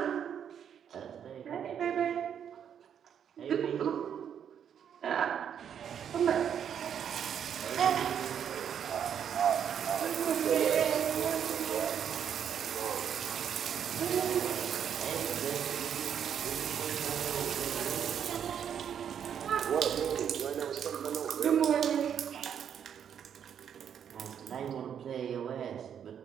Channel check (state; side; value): quieter; left; 8.5 dB